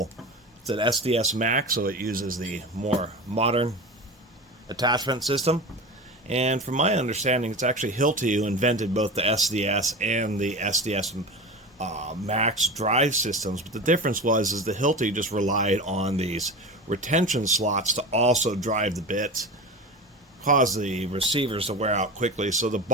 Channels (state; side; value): normal; both; correlation 0.28